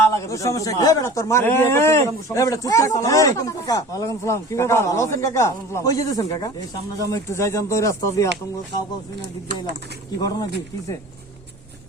লাগে। তোর সমস্যা কি? এই বেটা, তোর মার বিয়ে করতে এই, গেলাম, সমস্যা। এই বেটা, চুপ থাক। আসসালামু আলাইকুম কাকা। ওয়ালাইকুম সালাম। কি কাকা, ব্যাপার? ভালো আছেন কাকা? কই যেতেছেন কাকা? এই সামনে যাবো একটু যাইতাম তো, ওই রাস্তা দিয়ে আতঙ্ক কাউ কাউ শুনে দিক দিয়ে এলাম। কি ঘটনা কি কিসে?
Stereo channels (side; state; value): both; normal; correlation 0.40